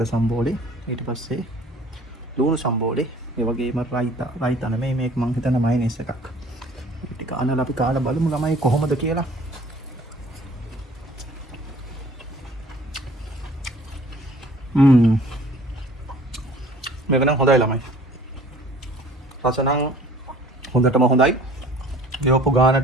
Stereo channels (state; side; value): normal; both; correlation 0.51